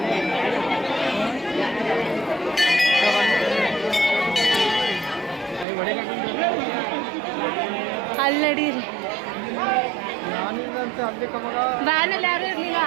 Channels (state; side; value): drops out; left; at 5.7 s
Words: ಅಲ್ಲಿ ನಡೀರಿ. ವ್ಯಾನಲ್ಲಿ ಯಾರು ಇರಲಿಲ್ಲ,